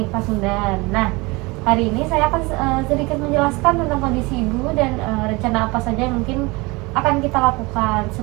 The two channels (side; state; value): left; quieter; 24.7 dB